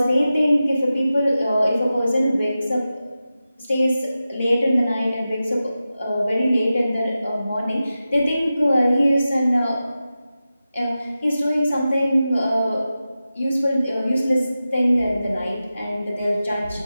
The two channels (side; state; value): both; inverted; correlation -0.93